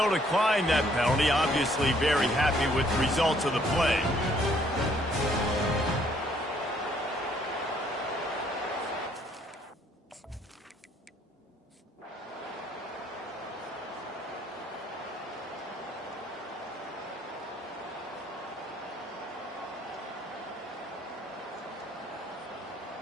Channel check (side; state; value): both; normal; correlation 0.65